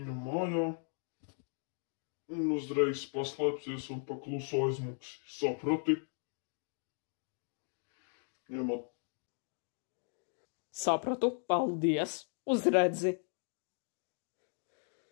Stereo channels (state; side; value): silent; right; 53 dB below the other